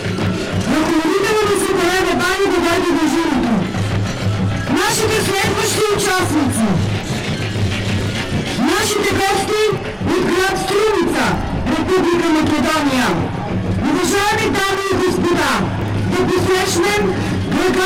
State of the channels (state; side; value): identical; both; correlation 1.00